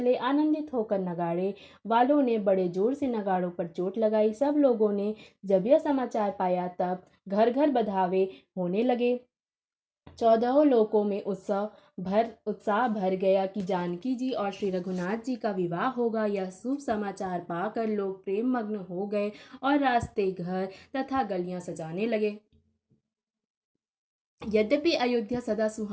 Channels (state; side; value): identical; both; correlation 1.00